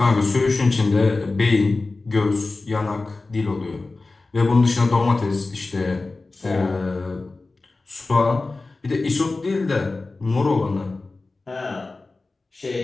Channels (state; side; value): quieter; right; 3.5 dB